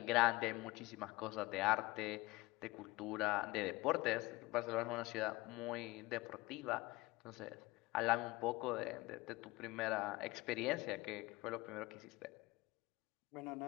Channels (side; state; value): right; quieter; 21.3 dB